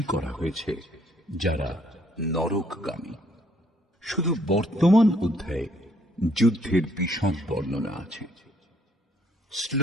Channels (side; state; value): both; normal; correlation 0.66